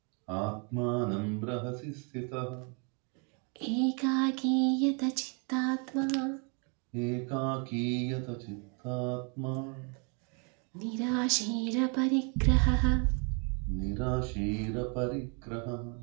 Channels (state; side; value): quieter; left; 36.2 dB